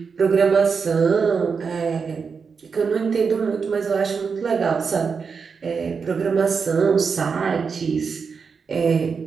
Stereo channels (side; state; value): left; quieter; 5.6 dB